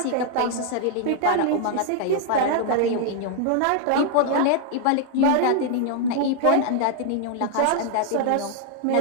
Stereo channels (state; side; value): different; both; correlation 0.00